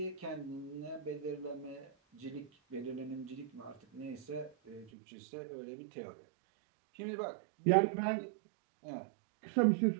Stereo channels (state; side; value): drops out; left; at 4.9 s